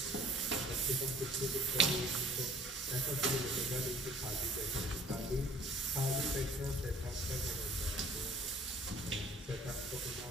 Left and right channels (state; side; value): normal; both; correlation 0.53